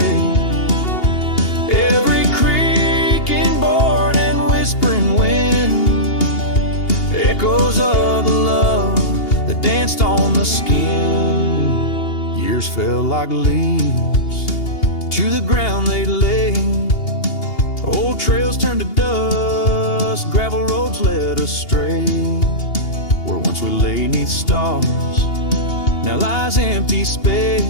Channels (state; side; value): late; right; 2.8 ms